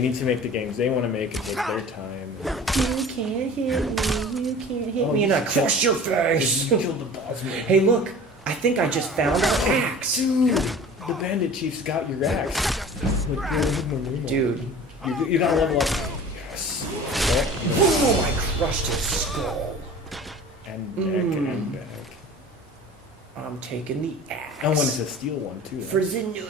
to make the games they want to make and take their time. You can't hit me, and I crush your face. You killed the boss man. Hey, look! I think I just found our axe. Dude, the bandit chief's got your axe. Dude, you gotta level up. Yes. Boom! I crushed his skull. And back and back. I'm taking the axe. I wanted to steal one too. For the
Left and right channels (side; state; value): both; normal; correlation 0.41